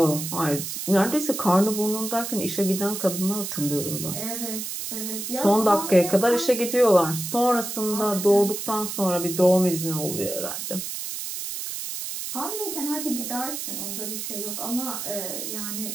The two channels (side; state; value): right; noise; hiss, 6 dB below the sound